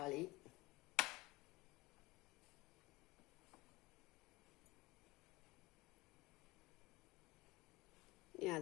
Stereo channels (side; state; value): right; quieter; 21.5 dB